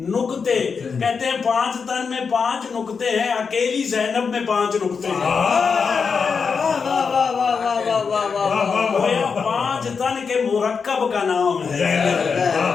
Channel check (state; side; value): quieter; right; 5.6 dB